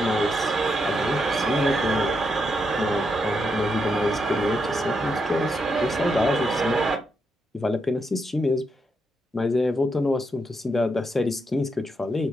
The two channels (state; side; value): normal; both; correlation 0.81